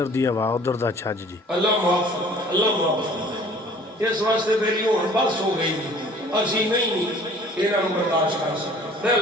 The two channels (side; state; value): both; normal; correlation 0.51